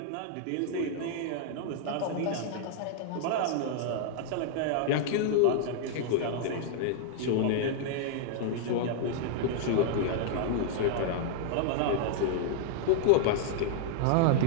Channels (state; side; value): different; both; correlation -0.01